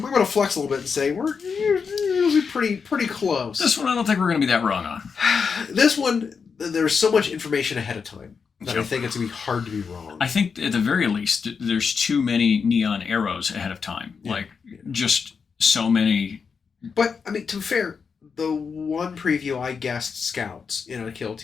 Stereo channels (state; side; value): quieter; right; 5.7 dB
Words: flex a little bit and say we're usually pretty close. This one I don't think we're gonna be that wrong on. This one, there's so much information ahead of time that I think it's gonna be hard to be wrong. I think at the very least there's too many neon arrows ahead of time. Just so many. But I mean, to be fair, the one preview I guessed scouts in a kill